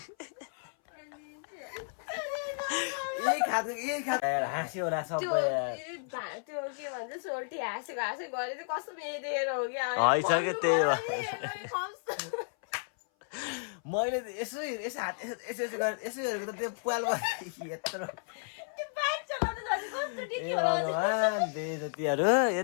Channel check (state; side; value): silent; right; 56 dB below the other